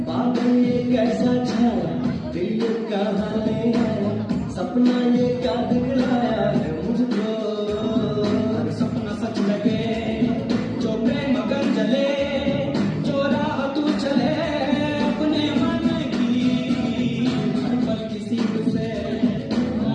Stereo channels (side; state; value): both; identical; correlation 1.00